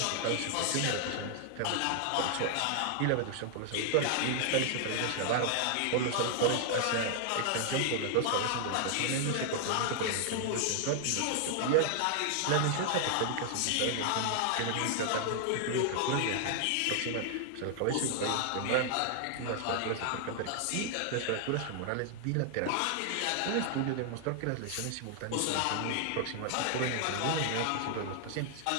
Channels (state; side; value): different; both; correlation 0.00